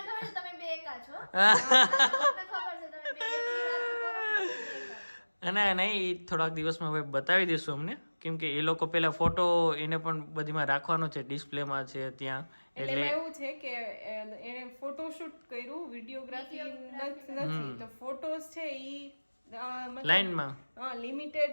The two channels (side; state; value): both; inverted; correlation -1.00